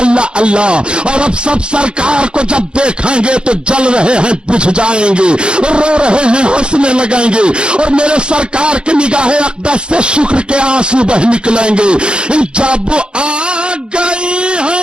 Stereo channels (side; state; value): left; late; 0.052 ms